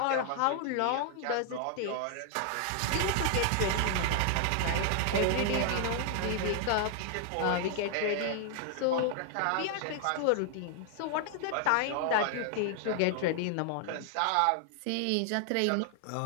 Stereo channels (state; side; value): different; both; correlation 0.00